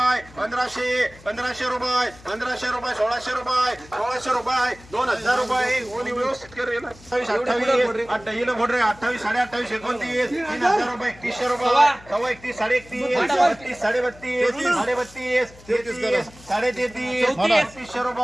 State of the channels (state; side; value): noise; left; hum, 22 dB below the sound